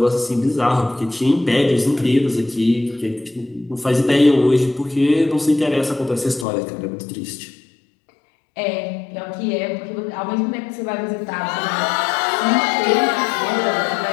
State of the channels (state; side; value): drops out; right; at 6.5 s